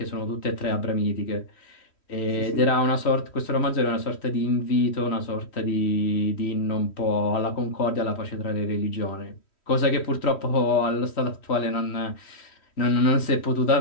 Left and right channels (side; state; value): right; late; 3.1 ms